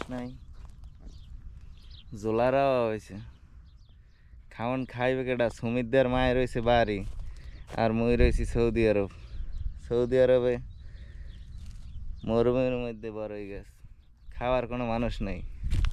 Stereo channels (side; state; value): both; identical; correlation 1.00